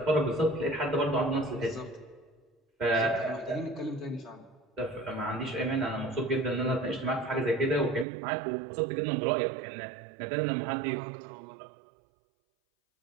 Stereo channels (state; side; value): drops out; left; at 8.1 s